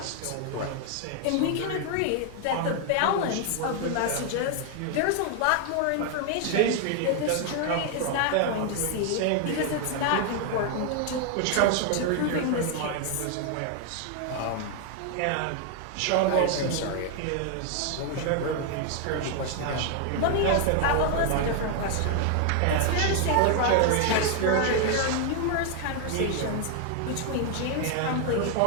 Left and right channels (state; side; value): different; both; correlation 0.00